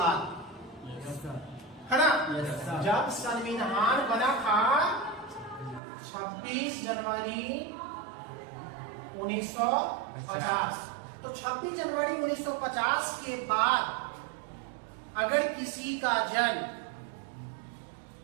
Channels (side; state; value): left; drops out; at 5.8 s